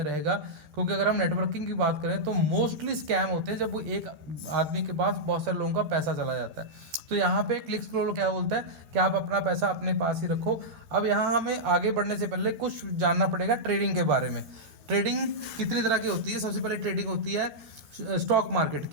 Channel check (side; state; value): left; late; 13 ms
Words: रहेगा। क्योंकि अगर हम नेटवर्किंग की बात करें तो मोस्टली स्कैम होते हैं जब वो एक आदमी के पास बहुत सारे लोगों का पैसा चला जाता है। तो यहाँ पे क्लिक्स ग्लोबल क्या बोलता है कि आप अपना पैसा अपने पास ही रखो। अब यहाँ हमें आगे बढ़ने से पहले कुछ जानना पड़ेगा ट्रेडिंग के बारे में। ट्रेडिंग कितनी तरह की होती है? सबसे पहले ट्रेडिंग होती है स्टॉक मार्केट